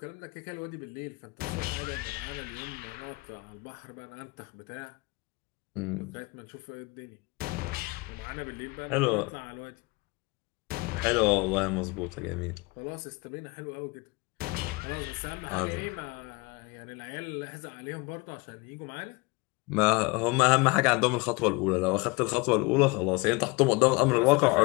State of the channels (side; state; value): right; quieter; 25.8 dB